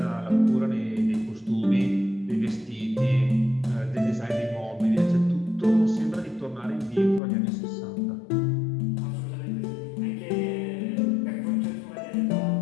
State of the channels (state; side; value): drops out; right; at 7.2 s